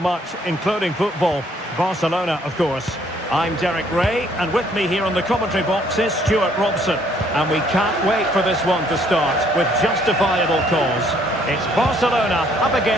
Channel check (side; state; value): both; normal; correlation 0.64